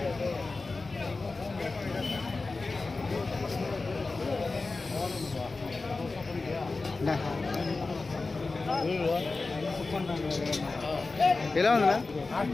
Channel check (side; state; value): right; quieter; 3.7 dB